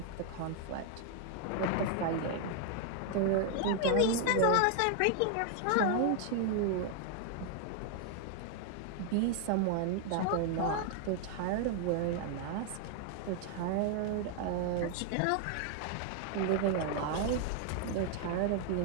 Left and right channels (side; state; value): both; different; correlation 0.00